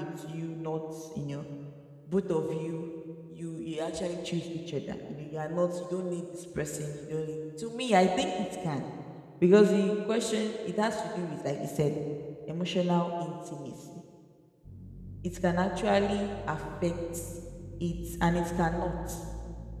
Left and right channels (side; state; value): both; identical; correlation 1.00